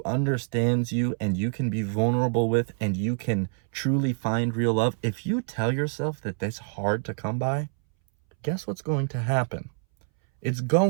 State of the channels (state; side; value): silent; left; 61 dB below the other